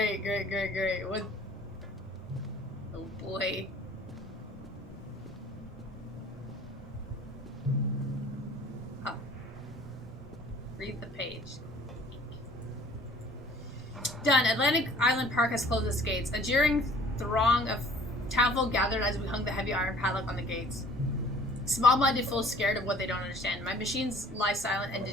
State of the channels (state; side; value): normal; both; correlation 0.53